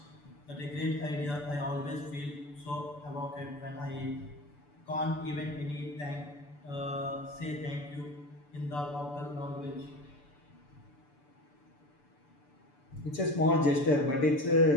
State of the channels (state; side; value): late; right; 6.9 ms